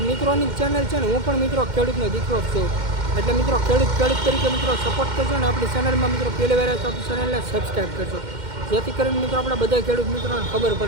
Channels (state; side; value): late; left; 2.1 ms